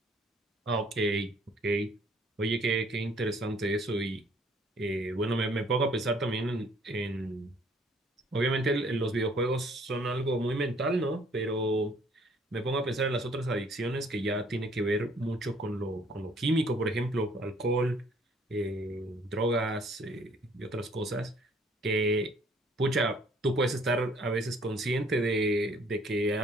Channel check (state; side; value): normal; both; correlation 0.60